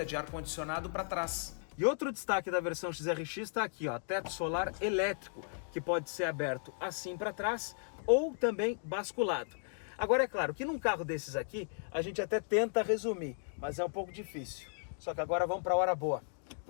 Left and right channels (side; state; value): right; silent; digital silence